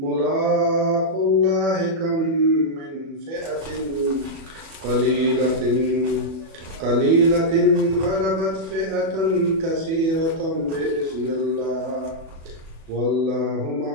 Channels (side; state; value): left; late; 37 ms